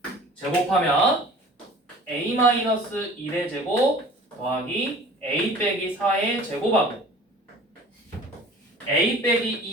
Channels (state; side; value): normal; both; correlation 0.45